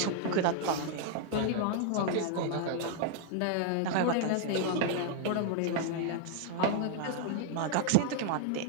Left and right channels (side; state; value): both; different; correlation -0.01